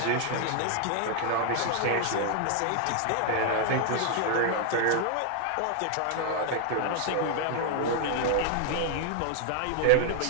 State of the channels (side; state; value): both; different; correlation 0.00